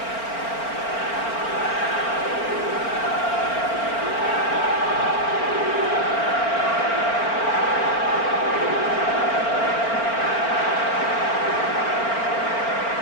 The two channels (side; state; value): right; late; 4.4 ms